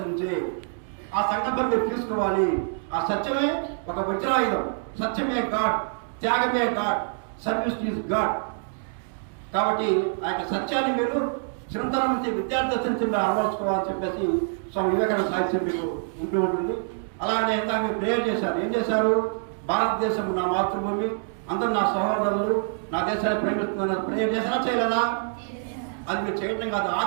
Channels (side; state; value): left; silent; digital silence